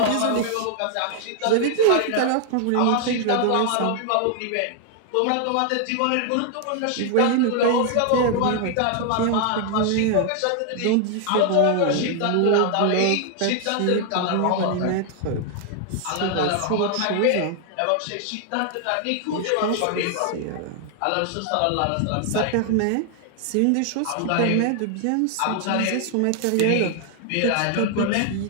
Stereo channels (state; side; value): different; both; correlation 0.00